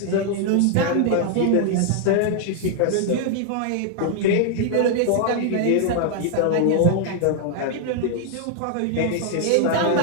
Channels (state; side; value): different; both; correlation 0.00